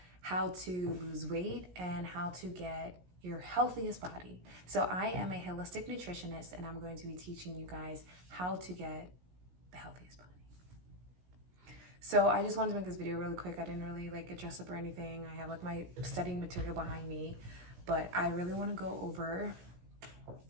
how to lose weight and how to get your healthiest body. So I am a holistic nutritionist and I'm going to be teaching you guys how to get the healthiest body. So I just wanted to make this video really quick. I didn't really get dressed up or anything. I have my studying material behind me, but I really want to go over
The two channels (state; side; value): late; left; 17 ms